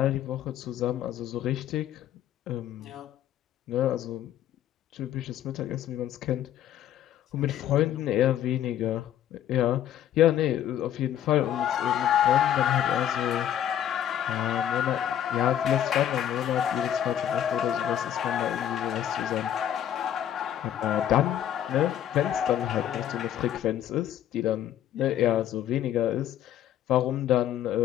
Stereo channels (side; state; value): right; quieter; 10.8 dB